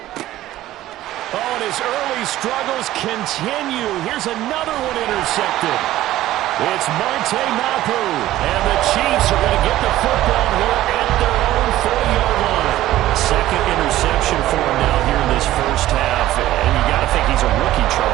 Oh, and his early struggles continue. Here's another one intercepted. It's Marte Mapu, and the Chiefs are going to get the football here at their own 40-yard line. Second interception for him now here in this first half. And you got to think he's a rookie,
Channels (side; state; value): left; quieter; 14.8 dB